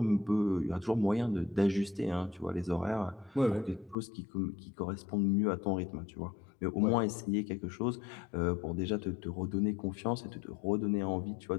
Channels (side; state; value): right; drops out; at 4.0 s